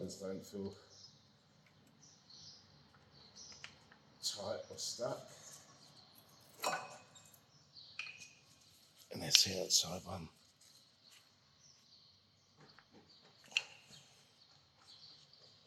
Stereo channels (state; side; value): identical; both; correlation 1.00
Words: don't feel tight or stuck. And there's the outside one.